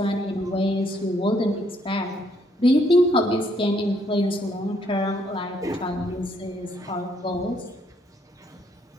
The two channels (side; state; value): both; normal; correlation 0.70